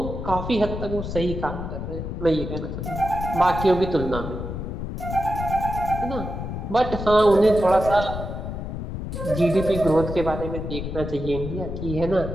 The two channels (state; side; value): noise; left; rumble, 6 dB below the sound